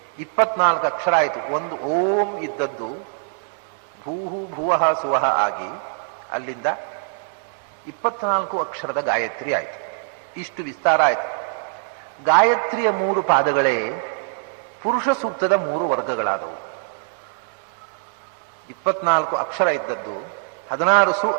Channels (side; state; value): left; silent; digital silence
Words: 24 ಅಕ್ಷರ ಆಯಿತು. ಒಂದು ಓಂ ಇದ್ದದ್ದು ಭೂಹು ಭುವಃ ಸುವಹ ಆಗಿ ಅಲ್ಲಿಂದ 24 ಅಕ್ಷರದ ಗಾಯತ್ರಿ ಆಯಿತು. ಇಷ್ಟು ವಿಸ್ತಾರ ಆಯಿತು. ಗಾಯತ್ರಿಯ 3 ಪಾದಗಳೇ ಪುರುಷ ಸೂಕ್ತದ 3 ವರ್ಗಗಳಾದವು. 24 ಅಕ್ಷರ ಇದ್ದದ್ದು